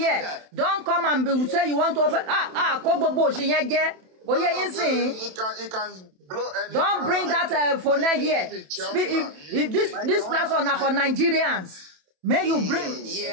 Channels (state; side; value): late; left; 27 ms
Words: Don't come and say you want to offer. It can blow any. Don't bring that for next year. If this platform are for Nigerians. May you bring